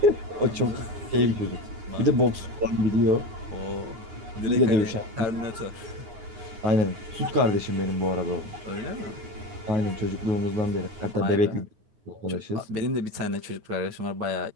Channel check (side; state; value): left; late; 9.6 ms